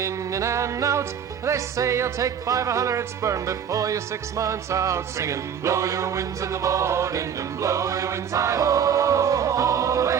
in and out. They say you'll take 500 sperm before you're 6 months out, singing, blow your winds in the morning and blow your winds hi-ho. Haul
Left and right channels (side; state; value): left; quieter; 8.0 dB